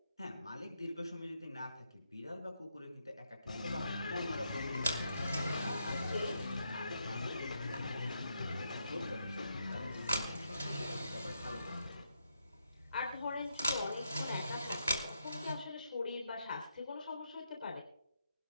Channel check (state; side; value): inverted; both; correlation -0.80